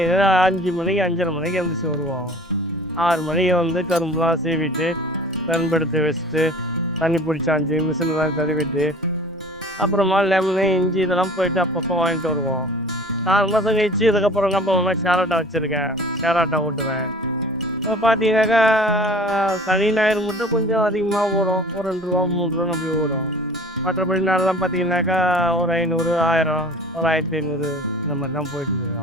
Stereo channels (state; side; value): normal; both; correlation 0.44